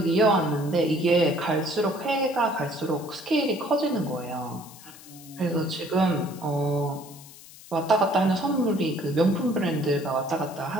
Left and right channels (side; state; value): left; noise; hiss, 19 dB below the sound